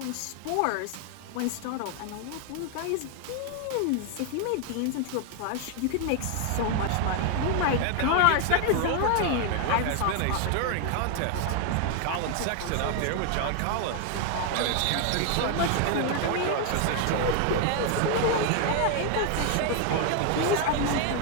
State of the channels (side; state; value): both; different; correlation 0.00